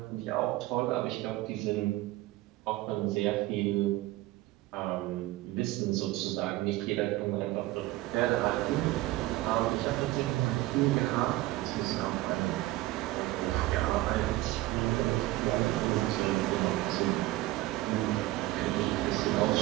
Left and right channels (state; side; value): quieter; left; 17.7 dB